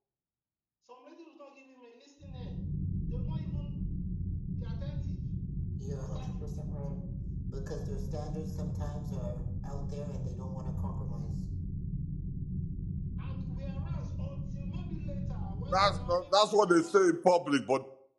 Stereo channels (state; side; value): identical; both; correlation 1.00